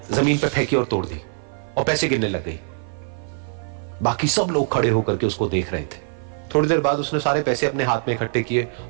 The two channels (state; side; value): silent; left; 56 dB below the other